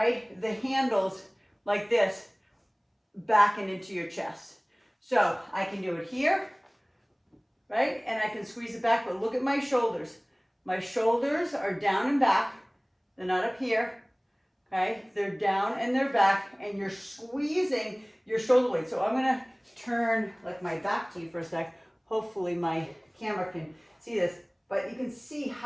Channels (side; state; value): both; identical; correlation 1.00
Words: the handles like this back and into your chest. So I can do it here, right? And I can squeeze it back, but look at my shoulders. My shoulders are down and back. They're not up here, okay? They're down and they're back, and you're squeezing your shoulder blades. So I'm gonna turn like my back to you for a sec. Hopefully my camera can see this, but you can see